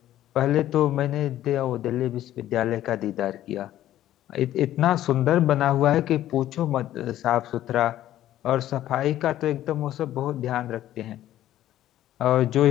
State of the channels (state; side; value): quieter; right; 13.0 dB